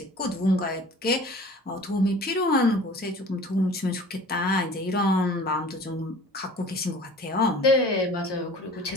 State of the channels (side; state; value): both; normal; correlation 0.44